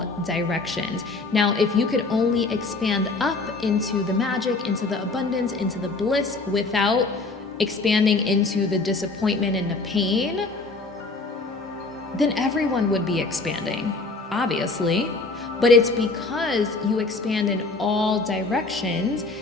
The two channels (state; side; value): quieter; right; 3.6 dB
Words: directions. Now, if you could only expand up into the magic, into the abundance, into the bliss without expanding into the disappointment and the pain, then everyone would be expanding, obviously. But it's because you expand in all directions